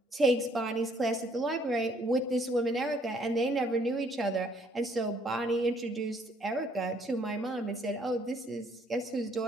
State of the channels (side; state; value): both; normal; correlation 0.65